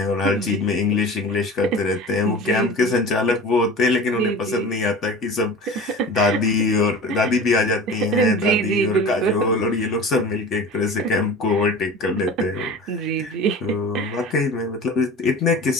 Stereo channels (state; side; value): normal; both; correlation 0.36